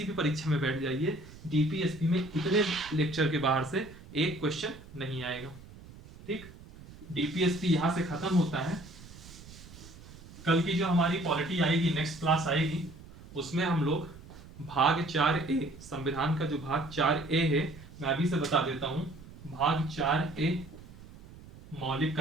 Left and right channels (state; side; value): noise; right; rumble, 18 dB below the sound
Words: भी परीक्षा में बैठ जाइए, डीपीएसपी में इतने लेक्चर के बाहर से एक क्वेश्चन नहीं आएगा, ठीक। डीपीएसपी यहां से खत्म होता है। कल की जो हमारी पॉलिटी आएगी, नेक्स्ट क्लास आएगी, उसमें हम लोग भाग 4A, संविधान का जो भाग 4A है, मैं अभी से बता देता हूं, भाग 4A मौलिक